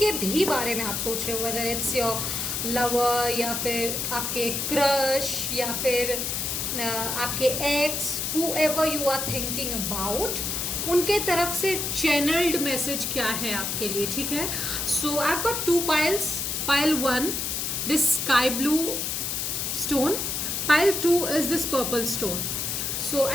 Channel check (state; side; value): noise; left; hiss, 1 dB below the sound